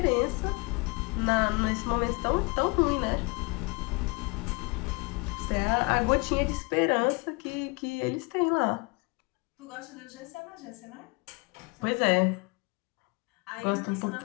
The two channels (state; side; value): quieter; right; 28.7 dB